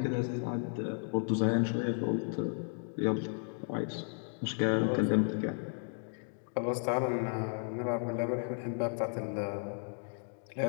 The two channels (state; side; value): silent; right; 55 dB below the other